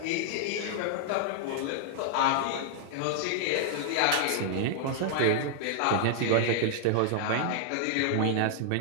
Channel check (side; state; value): both; different; correlation -0.01